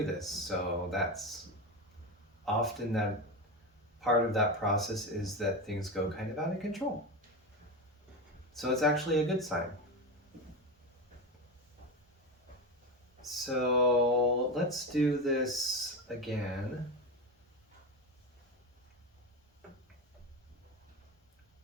this. So that's often that part of that process, is that things go kind of out of control. So it's actually a good sign. So let's do this again.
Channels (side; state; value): both; normal; correlation 0.19